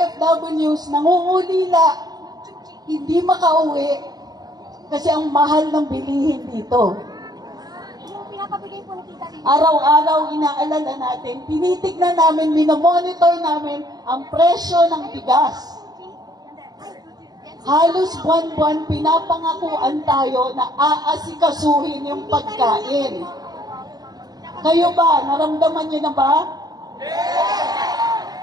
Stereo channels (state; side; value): late; left; 0.19 ms